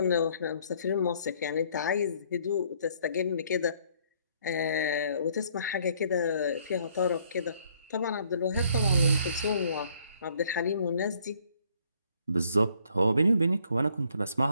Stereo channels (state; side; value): inverted; both; correlation -0.65